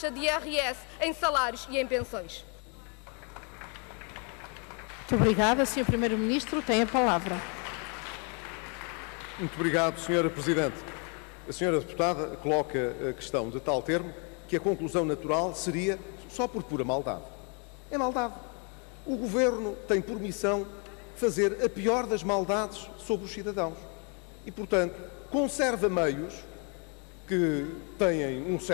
de IRS, em salários e em pensões. Muito obrigada, Sr. Primeiro-Ministro. Tem a palavra. Muito obrigado, Sra. Presidente. A Sra. Deputada coloca a questão de tal termo que a conclusão natural seria só por pura maldade. É maldade. O Governo tem por missão fazer a pior das maldades sobre os cidadãos. E, portanto, conserva meios que têm um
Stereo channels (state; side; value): quieter; right; 36.4 dB